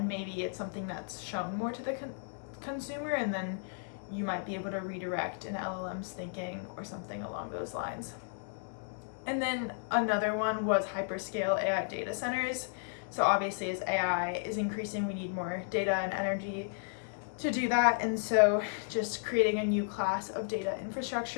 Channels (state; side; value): silent; right; digital silence